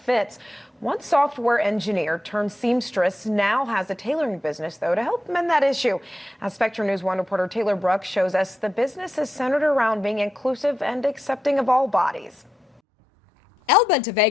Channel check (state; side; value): normal; both; correlation 0.87